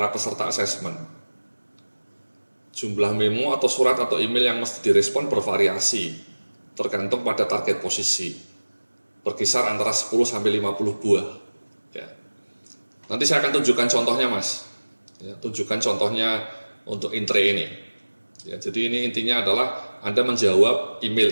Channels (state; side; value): inverted; both; correlation -1.00